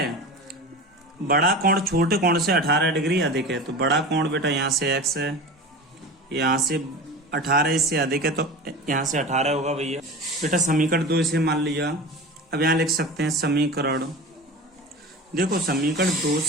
बड़ा कोण छोटे कोण से 18 डिग्री अधिक है, तो बड़ा कोण बेटा यहाँ से x है, यहाँ से 18 इससे अधिक है, तो यहाँ से 18 होगा भैया। बेटा समीकरण 2 इसे मान लिया। अब यहाँ लिख सकते हैं समीकरण, देखो समीकरण 2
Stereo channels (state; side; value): normal; both; correlation 0.32